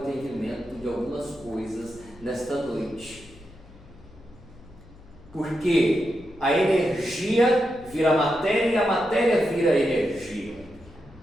de algumas coisas nesta noite. Porque a energia vira matéria e a matéria vira energia.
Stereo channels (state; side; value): noise; left; hum, 23 dB below the sound